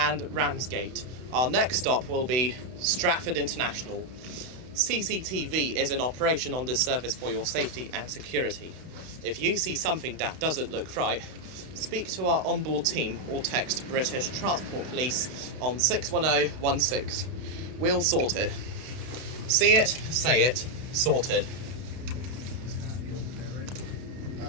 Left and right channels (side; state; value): left; late; 32 ms